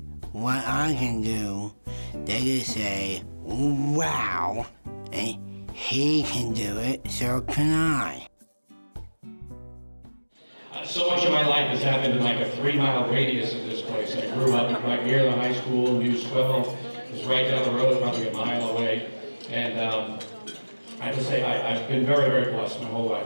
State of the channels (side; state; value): both; inverted; correlation -1.00